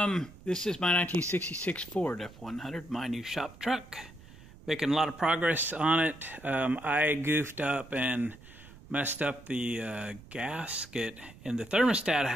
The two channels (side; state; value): right; noise; rumble, 20 dB below the sound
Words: This is my 1966 Ford F100, my new shop truck. Making a lot of progress on it. I goofed up and messed up the gasket in the thermostat